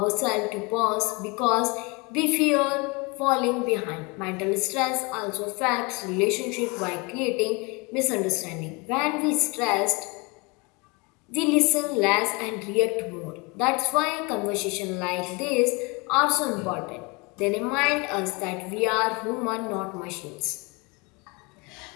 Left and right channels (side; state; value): right; quieter; 28.1 dB